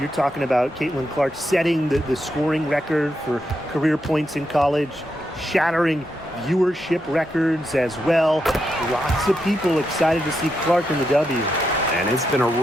talking about Caitlin Clark setting the scoring record for career points in college, shattering viewership records as well. Lots of people excited to see Clark in the W. And it's been a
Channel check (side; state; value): both; normal; correlation 0.83